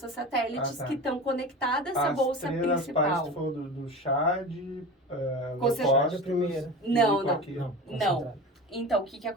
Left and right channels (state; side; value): normal; both; correlation 0.31